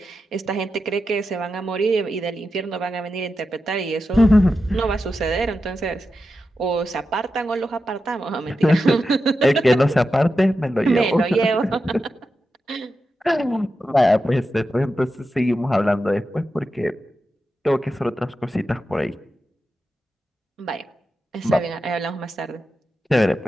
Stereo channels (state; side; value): normal; both; correlation 0.90